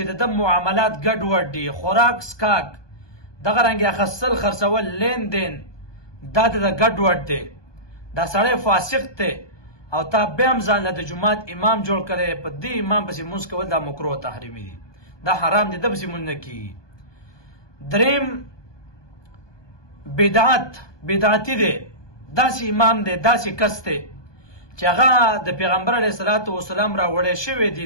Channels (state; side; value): late; right; 1.2 ms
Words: د معاملات ګډوډ دي، خوراک سکاک، دغه رنګ اخیستل خرڅول، لین دین دا د ګډوډ دی، دا سړی فاسق دی، او تا بیا هم ځان له د جماعت امام جوړ کړی، په دې امام پسې مونځ کول دا مکروه تحریمي دی، دا حرام دی، د پسې مونځ نه کېږي. دریم بدعتي دی، داسې امام دی، داسې کس دی چې هغه د پیغمبر علیه الصلاة والسلام راوړی شوی